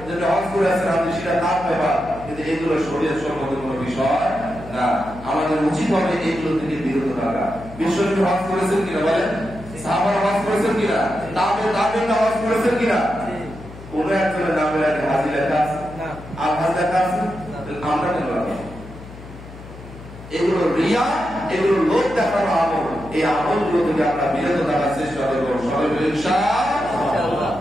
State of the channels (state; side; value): noise; left; hum, 16 dB below the sound